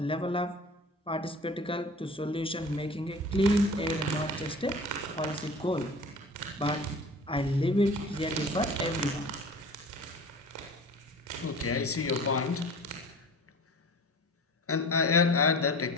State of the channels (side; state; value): both; normal; correlation 0.40